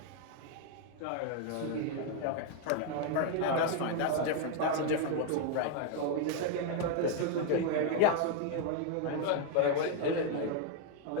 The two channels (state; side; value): different; both; correlation 0.00